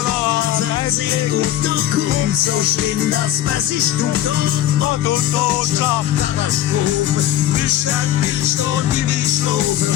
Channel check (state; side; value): quieter; right; 12.6 dB